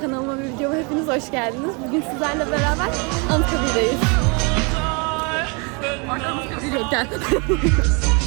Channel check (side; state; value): left; quieter; 32.2 dB